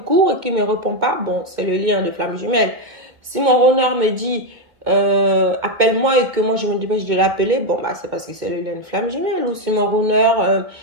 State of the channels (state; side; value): late; left; 2.1 ms